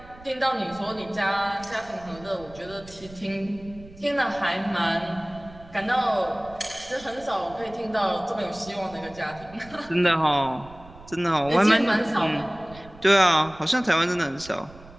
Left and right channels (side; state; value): right; noise; rumble, 20 dB below the sound